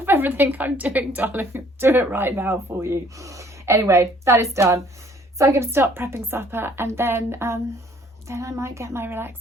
everything I'm doing, darling. Do it right now for you. Anyway, that is done. So I'm going to start prepping supper, and then I might get my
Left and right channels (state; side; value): normal; both; correlation 0.59